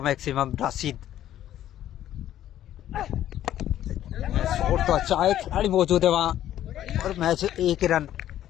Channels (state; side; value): quieter; right; 12.1 dB